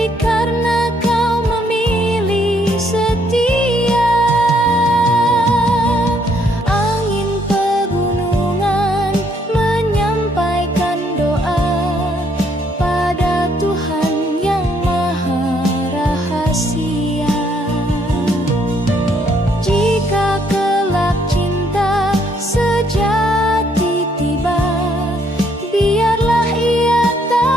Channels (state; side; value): normal; both; correlation 0.69